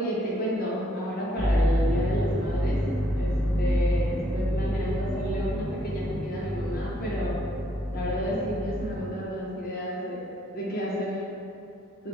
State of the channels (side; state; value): both; normal; correlation 0.70